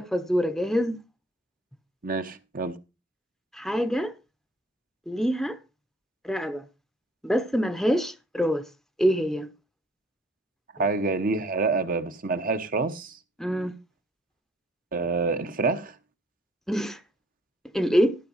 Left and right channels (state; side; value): normal; both; correlation 0.64